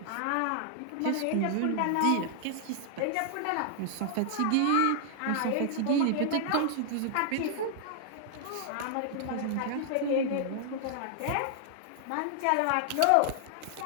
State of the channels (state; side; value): different; both; correlation -0.01